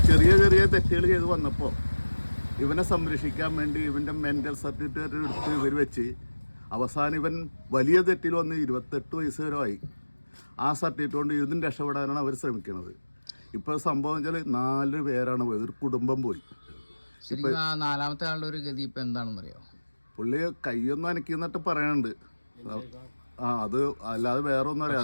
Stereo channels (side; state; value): both; inverted; correlation -1.00